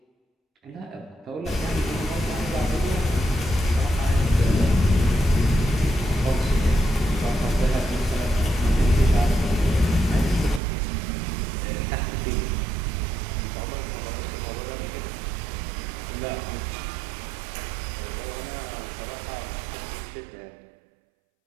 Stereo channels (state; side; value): drops out; left; at 10.6 s